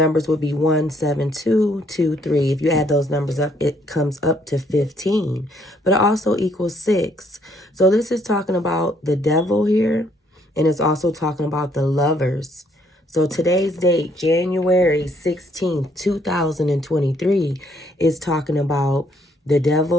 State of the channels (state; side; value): normal; both; correlation 0.67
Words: would be 17223. If you add those numbers up, it comes up to 15. But it also equals 6. So this is talking about the devil here. And it's also talking about the lovers. So today's date, January 16th, 2023, is talking about the